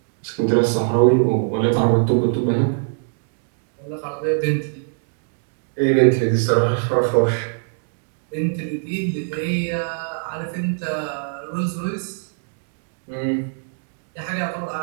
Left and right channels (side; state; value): left; silent; digital silence